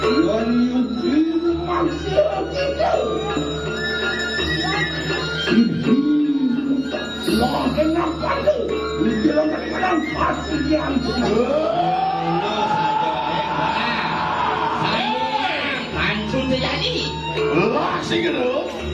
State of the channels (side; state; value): both; identical; correlation 1.00